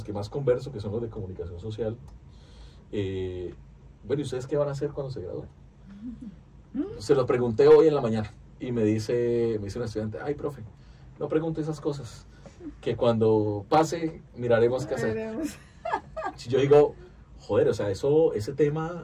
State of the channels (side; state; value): both; identical; correlation 1.00